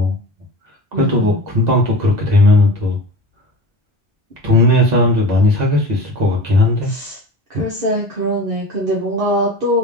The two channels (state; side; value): normal; both; correlation 0.34